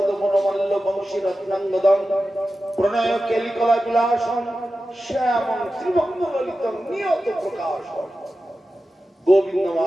মনোমল্ল বংশী রত্নাঙ্গদম প্রণয় কেলিকলা বিলাসম শ্যামং ত্রিভঙ্গ ললিতম নিয়ত প্রকাশম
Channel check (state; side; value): normal; both; correlation 0.93